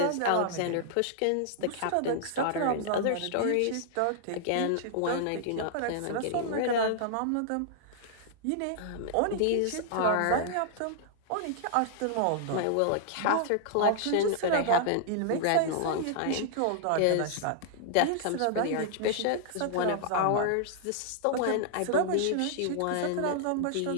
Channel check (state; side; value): different; both; correlation -0.01